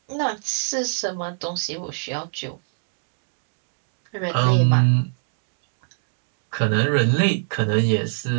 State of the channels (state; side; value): silent; left; 61 dB below the other